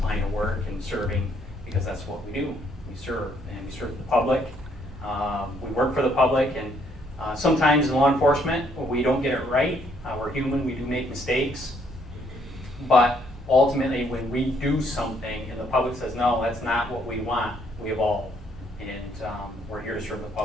line of work and serving, because that's what we do. We serve, and we serve the public. We work for the public, and sometimes in law enforcement, we don't get it right. We're human, we do make mistakes. But ultimately, when we do something and the public says, no, that's not what we want, we evolve. And we're here to serve the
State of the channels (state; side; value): normal; both; correlation 0.68